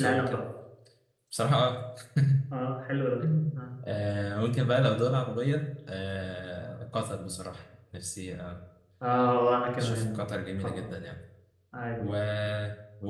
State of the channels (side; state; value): both; identical; correlation 1.00